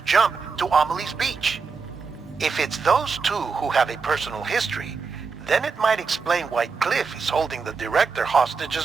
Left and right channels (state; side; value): quieter; left; 5.0 dB